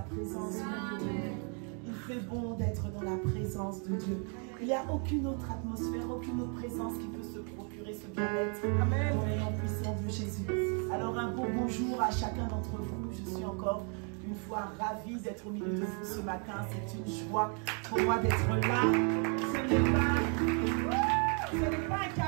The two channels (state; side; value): quieter; left; 38.6 dB